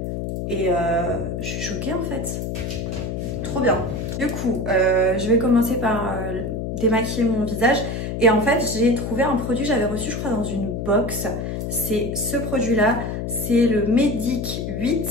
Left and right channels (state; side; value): noise; left; hum, 4 dB below the sound